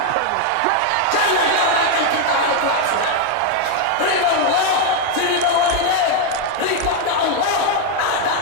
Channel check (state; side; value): different; both; correlation 0.01